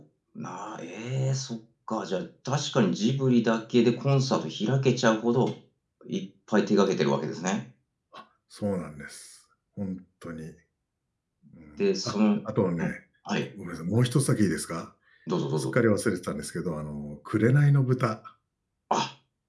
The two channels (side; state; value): both; identical; correlation 1.00